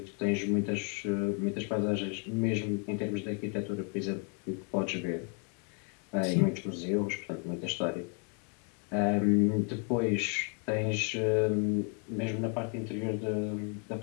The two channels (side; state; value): right; quieter; 39.6 dB